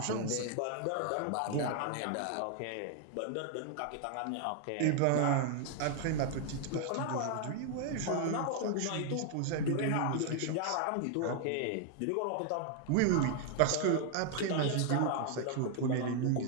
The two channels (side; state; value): both; different; correlation 0.00